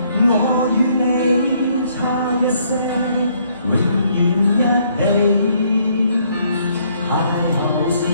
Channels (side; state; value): both; inverted; correlation -0.68